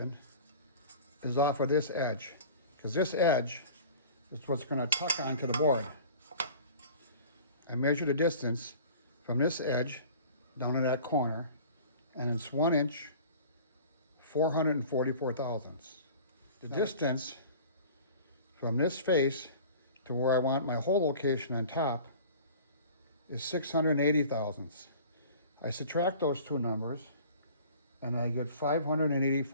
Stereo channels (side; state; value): both; inverted; correlation -0.44